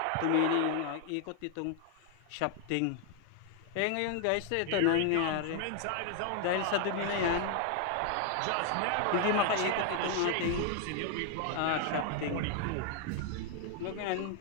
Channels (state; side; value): different; both; correlation 0.00